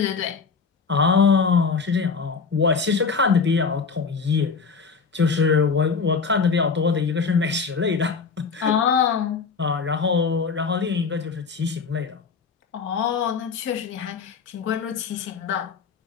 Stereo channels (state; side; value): quieter; right; 5.2 dB